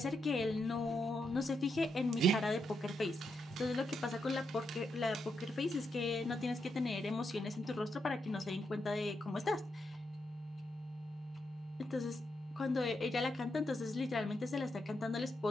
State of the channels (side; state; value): both; normal; correlation 0.82